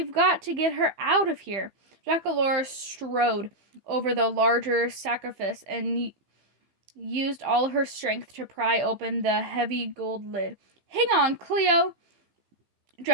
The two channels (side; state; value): left; late; 15 ms